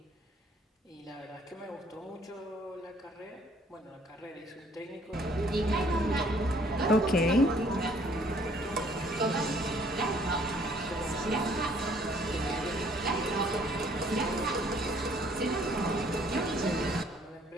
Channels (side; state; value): both; normal; correlation 0.61